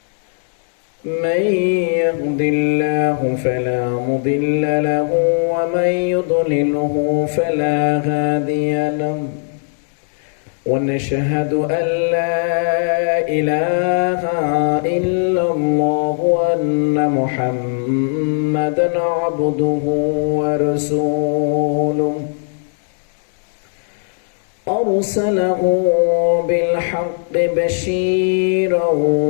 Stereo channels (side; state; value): right; silent; 62 dB below the other